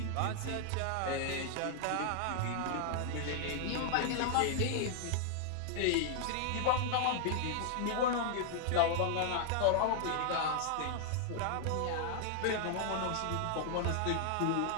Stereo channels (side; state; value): both; different; correlation 0.00